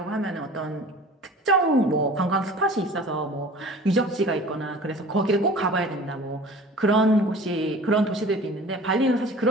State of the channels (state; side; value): normal; both; correlation 0.43